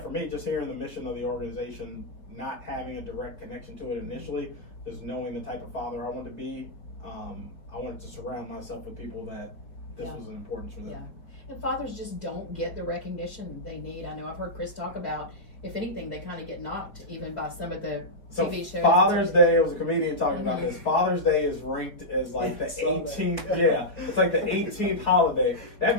me, just hearing the mission of the organization, not having a direct connection to it initially, just knowing the type of father I wanted to be, I wanted to surround myself with people that this was an importance for them. And fathers just don't get the recognition they need. I know I've heard Chris talk about, if anything, they kind of get knocked even by some of the TV shows. Father's Day, it was a comedian talking about this. Father's Day is ranked as like the 18th. Yeah, it's like the 18th holiday. That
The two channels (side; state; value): right; late; 4.3 ms